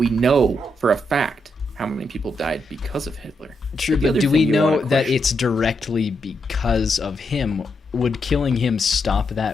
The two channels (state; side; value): normal; both; correlation 0.81